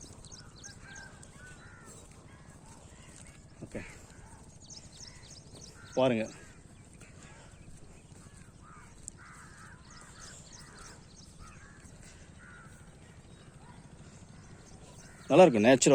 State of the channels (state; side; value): identical; both; correlation 1.00